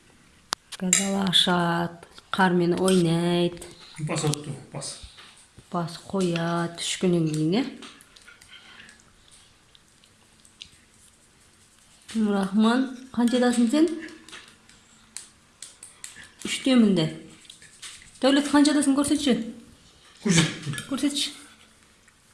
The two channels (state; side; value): identical; both; correlation 1.00